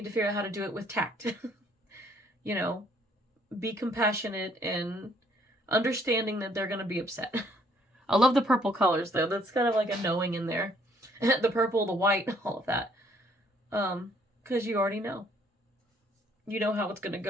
to figure out how to do it with tact. You know, be compassionate and understanding that they're going to be upset. I love the purple colors, though. That's kind of like a knowing in there. The purple, the white, all of that. Because you already know. You know how it's going to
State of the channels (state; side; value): normal; both; correlation 0.65